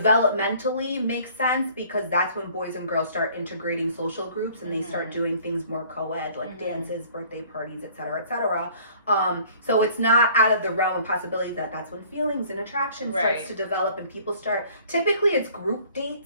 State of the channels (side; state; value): both; inverted; correlation -0.54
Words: makes sense, because that's when boys and girls start integrating social groups and they start doing things more co-ed, like dances, birthday parties, etc., etc. So it's not out of the realm of possibility that's when feelings and attraction starts to develop, and people start, typically it's group